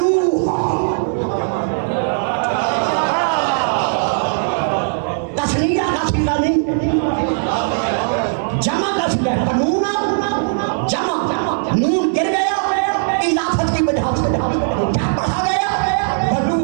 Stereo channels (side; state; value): left; silent; digital silence